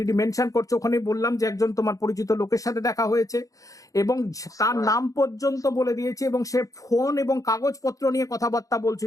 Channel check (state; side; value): late; right; 0.16 ms